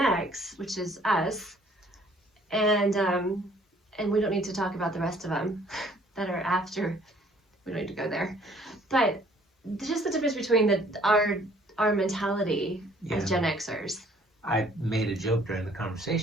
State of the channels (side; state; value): both; normal; correlation 0.58